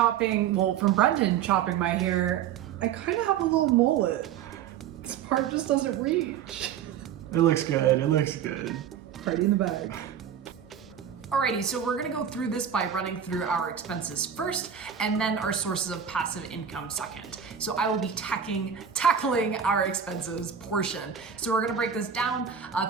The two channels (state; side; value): quieter; left; 8.3 dB